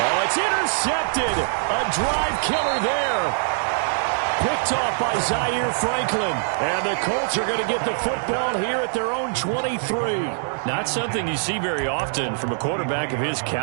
it's intercepted. A drive killer there. Picked off by Zaire Franklin. And the Colts are going to get the football here at their own 23. Not something you see very often from a quarterback of his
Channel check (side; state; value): left; silent; 63 dB below the other